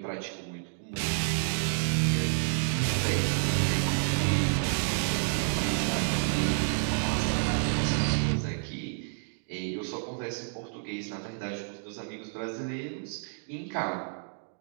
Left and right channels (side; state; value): left; silent; digital silence